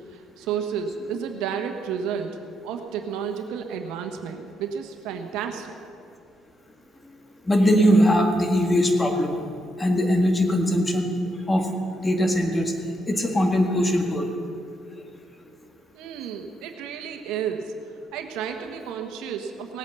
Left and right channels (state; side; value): normal; both; correlation 0.79